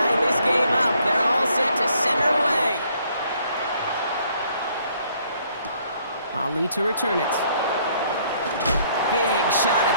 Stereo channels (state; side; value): inverted; both; correlation -0.65